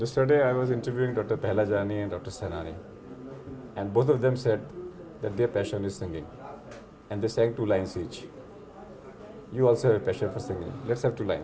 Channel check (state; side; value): identical; both; correlation 1.00